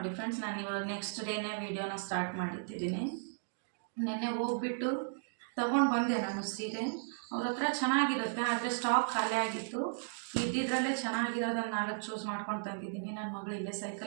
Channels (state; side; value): silent; left; digital silence